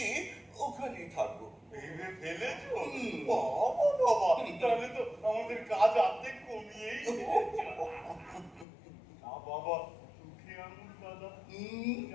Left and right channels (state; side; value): drops out; right; at 8.7 s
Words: ওখানেই থাকবো। ভেবে ফেলেছো? বাবা বাবা, তাহলে তো আমাদের কাজ অর্ধেক কমিয়েই দিয়েছো। না বাবা, চোখে আঙুল দাদা